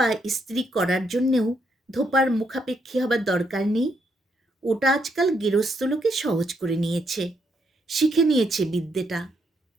ইস্ত্রি করার জন্যেও ধোপার মুখাপেক্ষী হবার দরকার নেই। ওটা আজকাল গেরস্থ লোকে সহজ করে নিয়েছে, শিখে নিয়েছে বিদ্যেটা।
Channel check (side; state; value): both; normal; correlation 0.76